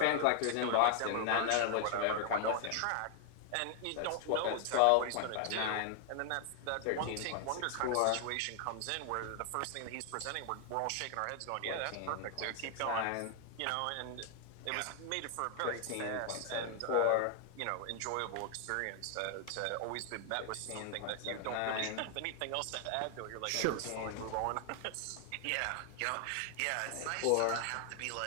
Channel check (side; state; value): both; different; correlation 0.00